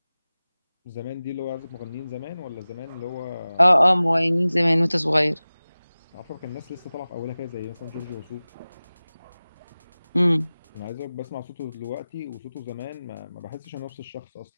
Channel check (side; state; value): both; inverted; correlation -0.97